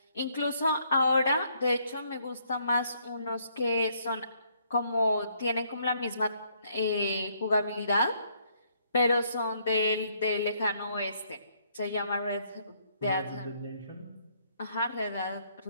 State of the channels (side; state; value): both; inverted; correlation -0.70